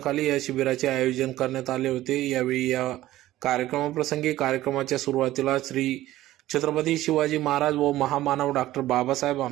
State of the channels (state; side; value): quieter; left; 15.2 dB